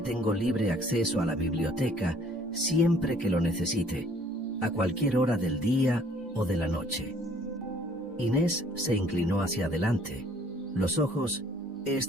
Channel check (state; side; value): normal; both; correlation 0.58